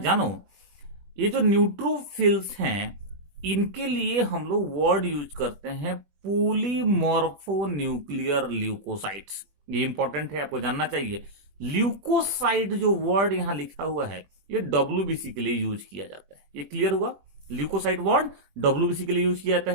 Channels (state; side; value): late; left; 21 ms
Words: ये जो न्यूट्रोफिल्स हैं इनके लिए हम लोग वर्ड यूज करते हैं पॉलीमॉर्फोन्यूक्लियर ल्यूकोसाइट्स। ये इंपॉर्टेंट है, आपको जानना चाहिए। ल्यूकोसाइट जो वर्ड यहां लिखा हुआ है ये WBC के लिए यूज किया जाता है। ये क्लियर हुआ, ल्यूकोसाइट वर्ड WBC के लिए यूज किया जाता